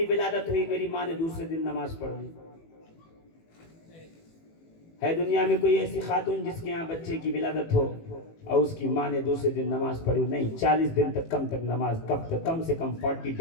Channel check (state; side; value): late; right; 18 ms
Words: ولادت ہوئی, میری ماں نے دوسرے دن نماز پڑھ لی؟ ہے دنیا میں کوئی ایسی خاتون جس کے یہاں بچے کی ولادت ہو اور اس کی ماں نے دوسرے دن نماز پڑھی؟ نہیں. 40 دن تک نماز, کم سے کم 40